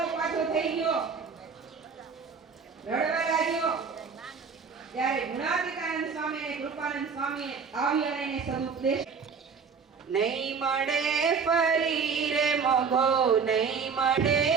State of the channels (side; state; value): left; quieter; 5.7 dB